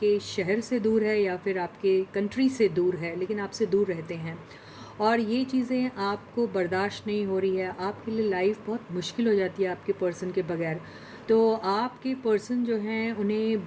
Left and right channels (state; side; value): identical; both; correlation 1.00